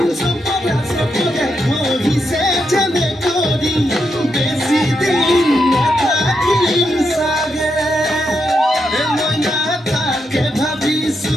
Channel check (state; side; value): normal; both; correlation 0.83